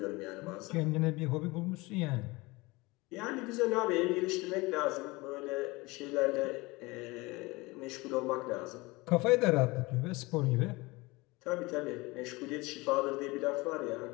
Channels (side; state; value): right; quieter; 23.2 dB